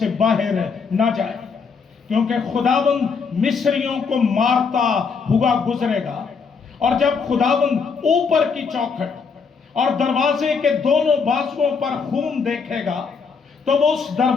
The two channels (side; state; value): right; quieter; 5.4 dB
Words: बाहर न जाए, क्योंकि खुदावंद मिस्रियों को मारता हुआ गुजरेगा। और जब खुदावंद ऊपर की चौखट और दरवाजे के दोनों बाजुओं पर खून देखेगा तो वो उस